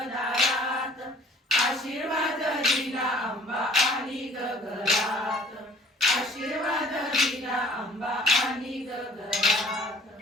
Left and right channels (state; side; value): normal; both; correlation 0.53